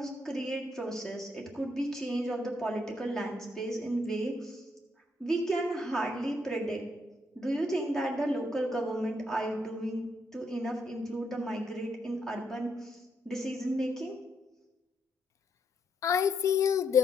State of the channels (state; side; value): normal; both; correlation 0.76